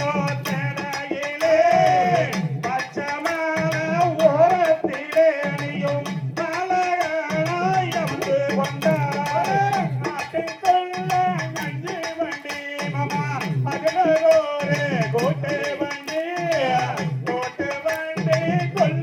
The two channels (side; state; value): both; identical; correlation 1.00